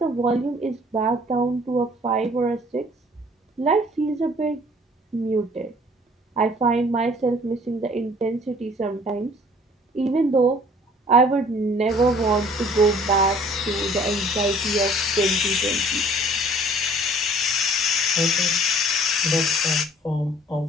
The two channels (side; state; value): both; normal; correlation 0.54